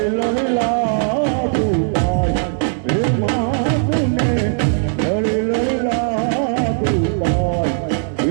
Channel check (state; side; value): silent; left; 67 dB below the other